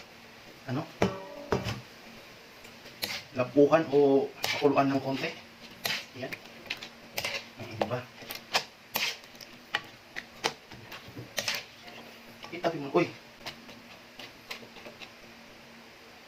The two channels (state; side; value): identical; both; correlation 1.00